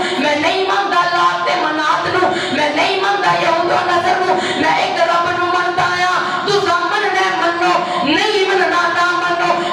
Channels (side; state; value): both; identical; correlation 1.00